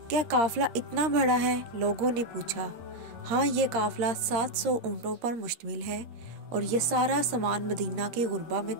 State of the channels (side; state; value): left; late; 13 ms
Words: क्या काफिला इतना बड़ा है? लोगों ने पूछा। हाँ, ये काफिला 700 ऊँटों पर मुश्तमिल है और ये सारा सामान मदीना के गुरबा में